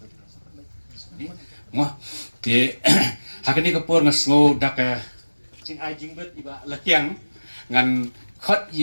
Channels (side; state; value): both; inverted; correlation -1.00